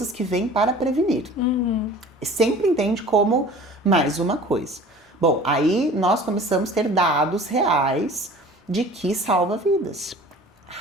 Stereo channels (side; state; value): both; normal; correlation 0.44